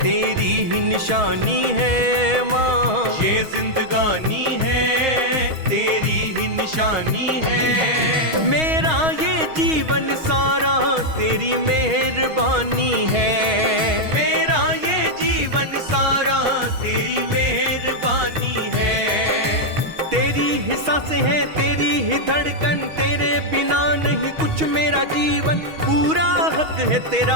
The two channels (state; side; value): late; left; 6.3 ms